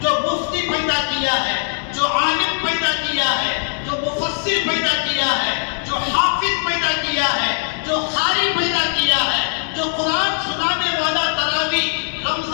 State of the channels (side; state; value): right; silent; digital silence